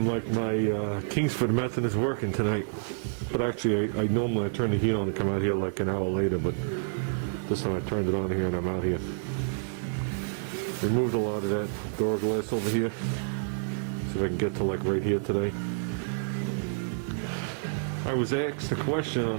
like my Kingsford method is working tonight. But actually, I normally turn the heat on to come out here like an hour later, but this time I turned it on here and I'm out here. Removed a lot of that door glass over here. See if I can get to like right here today. I was asked a question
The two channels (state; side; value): silent; left; digital silence